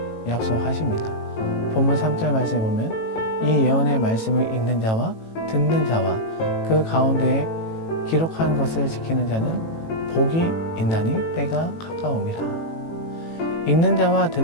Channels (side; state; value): right; late; 18 ms